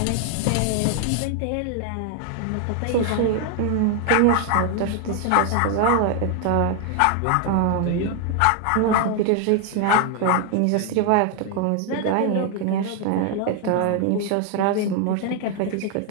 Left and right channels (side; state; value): both; different; correlation 0.00